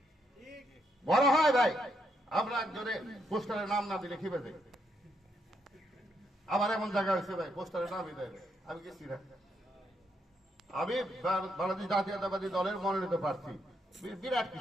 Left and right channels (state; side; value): normal; both; correlation 0.77